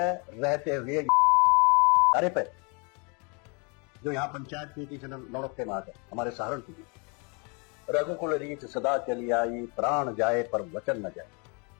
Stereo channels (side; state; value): right; quieter; 33.5 dB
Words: रहते हुए अरे पे जो यहाँ पंचायत नीति से नौड़ते मार है हमारे सहारनपुर की, रघुकुल रीत सदा चली आई, प्राण जाए पर वचन न जाए।